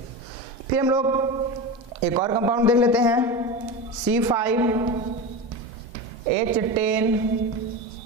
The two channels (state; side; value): normal; both; correlation 0.24